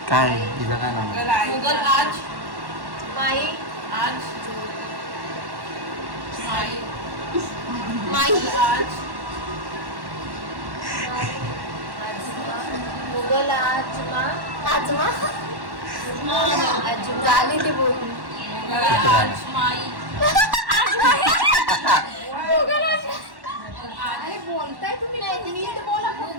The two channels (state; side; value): late; left; 1.1 ms